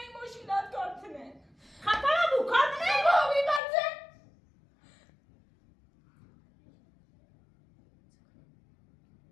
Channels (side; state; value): right; drops out; at 3.6 s